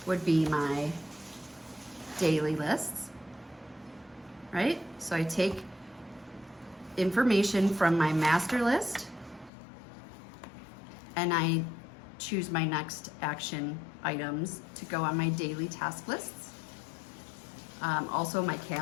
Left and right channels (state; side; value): drops out; right; at 9.5 s